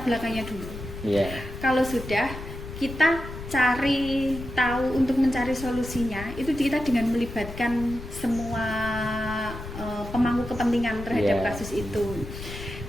belakangnya dulu. Kalau sudah kita cari tahu untuk mencari solusinya, itu kita dengan melibatkan semua pemangku kepentingan terhadap kasus itu.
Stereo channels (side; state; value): left; noise; rumble, 10 dB below the sound